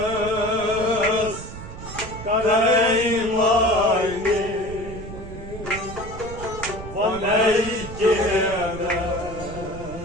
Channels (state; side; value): noise; right; rumble, 11 dB below the sound